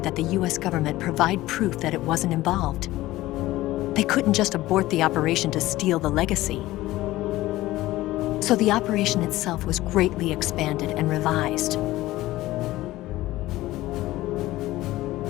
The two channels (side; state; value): right; quieter; 17.0 dB